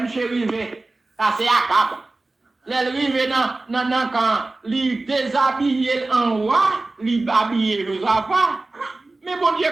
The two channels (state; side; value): quieter; left; 3.2 dB